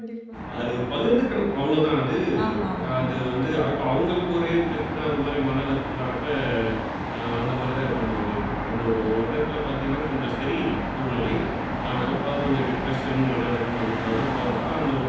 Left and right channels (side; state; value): both; identical; correlation 1.00